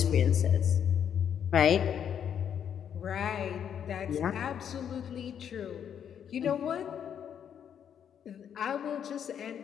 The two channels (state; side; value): quieter; right; 8.6 dB